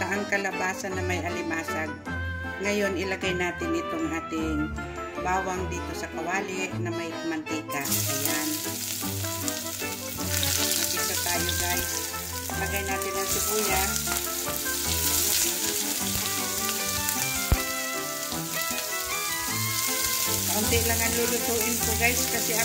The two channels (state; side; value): identical; both; correlation 1.00